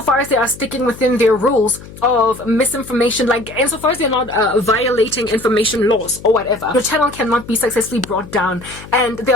as they are sticking within their rules of misinformation, like insofar as they're not violating information laws or whatever. Your channel cannot be successfully brought down. And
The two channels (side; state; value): left; noise; hum, 17 dB below the sound